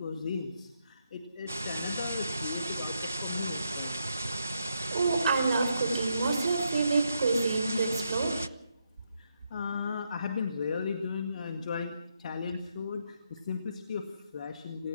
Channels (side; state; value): both; inverted; correlation -0.80